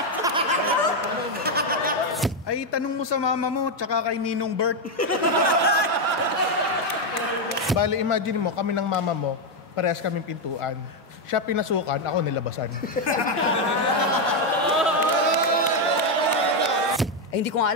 Ay, tanong mo sa mama mo, tsaka kay Ninong Bert. Bale, imagine mo, kami ng mama mo, parehas kaming pintuan. Siya pinasukan, ako nilabasan. Ay, hindi ko nga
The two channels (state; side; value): normal; both; correlation 0.04